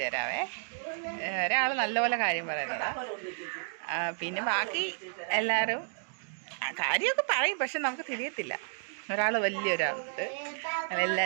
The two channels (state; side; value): silent; left; digital silence